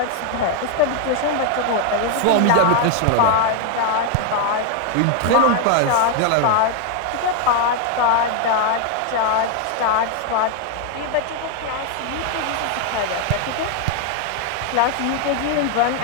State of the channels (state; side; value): different; both; correlation 0.00